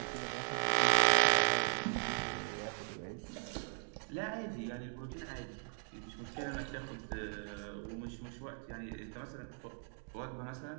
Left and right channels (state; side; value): silent; left; 52 dB below the other